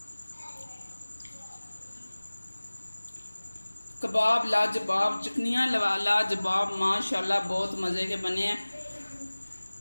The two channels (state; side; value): inverted; both; correlation -1.00